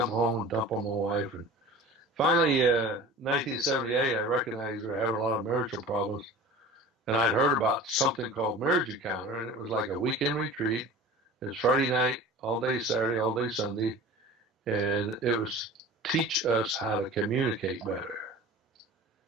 home and dump on my wife. And finally, 1978, I recognized we were having a lot of marital problems. And I'd heard about something called Marriage Encounter, and it was like a weekend retreat. It was Friday night, all day Saturday, all day Sunday. And it was teach us how to communicate better.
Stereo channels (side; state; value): both; normal; correlation 0.39